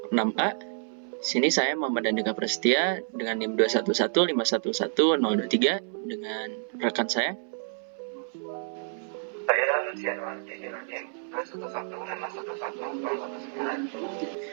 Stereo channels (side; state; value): left; silent; 59 dB below the other